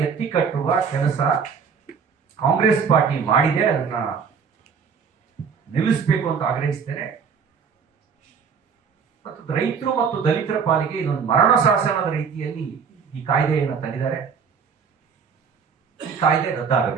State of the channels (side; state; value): left; quieter; 6.2 dB